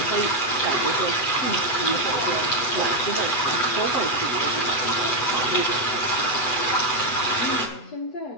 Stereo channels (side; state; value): right; late; 8.2 ms